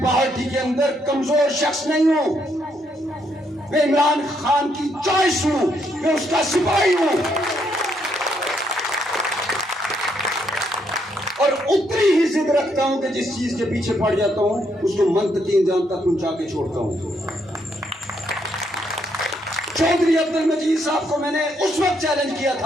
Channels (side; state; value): both; normal; correlation 0.74